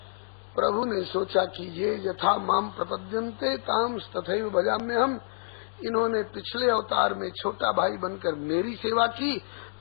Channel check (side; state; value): right; silent; digital silence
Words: प्रभु ने सोचा कि ये यथा माम प्रपद्यन्ते ताम तथैव भजाम्यहम्, इन्होंने पिछले अवतार में छोटा भाई बनकर मेरी सेवा की,